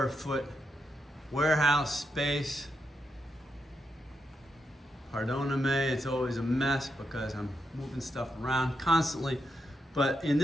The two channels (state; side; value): normal; both; correlation 0.83